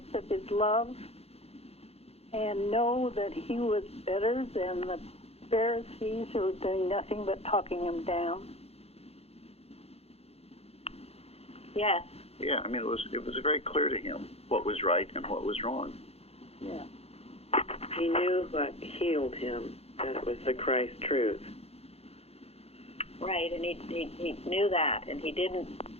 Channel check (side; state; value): right; late; 0.29 ms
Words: of his love and know that he was better than the Pharisees who were doing nothing but talking him down? Yes. Yeah, it was very clear to him what was right and what was wrong. Yeah. He knew what healed him, that it was the Christ truth. Right, and he knew that, and he didn't